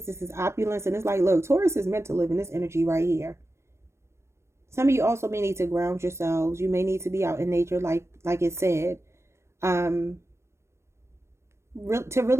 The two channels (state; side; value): late; left; 0.13 ms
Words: This is opulence. And it's like, look, Taurus is meant to live in this energy right here. Some of you also may need to ground yourselves. You may need to be out in nature, like it said. To